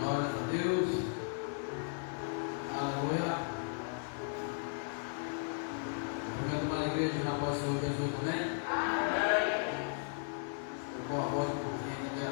a Deus. Aleluia. Primeiro uma igreja já passou Jesus, amém? Com a voz um pouquinho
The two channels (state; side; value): silent; right; digital silence